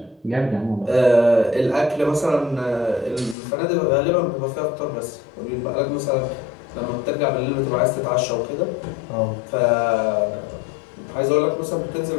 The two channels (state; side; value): drops out; right; at 3.4 s